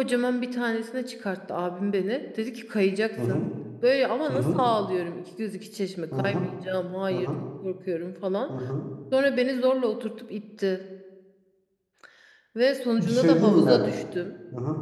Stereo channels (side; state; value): both; identical; correlation 1.00